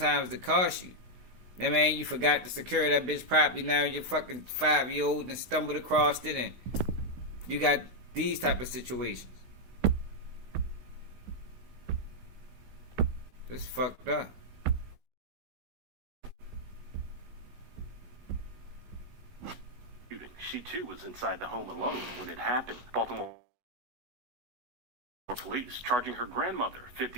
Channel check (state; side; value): late; left; 16 ms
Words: to cost you. You know what I mean, you forgot to secure that bitch properly, now you're fucking 5-year-old and stumbled across it, and you got these type of situations. It's fucked up. She too was inside the home alone when it happened. Baltimore police charging her grandmother,